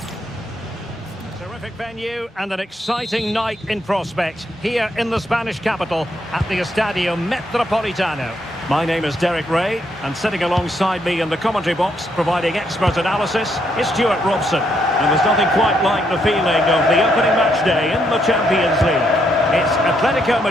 venue and an exciting night in prospect here in the Spanish capital at the Estadio Metropolitano. My name is Derek Ray, and sitting alongside me in the commentary box, providing expert analysis, is Stuart Robson. And there's nothing quite like the feeling of the opening match day in the Champions League. It's Atletico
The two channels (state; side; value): normal; both; correlation 0.75